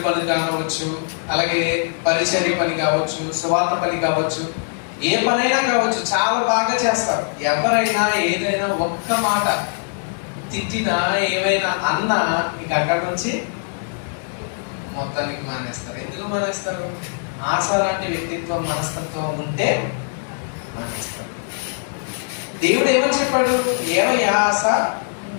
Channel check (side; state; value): right; silent; 65 dB below the other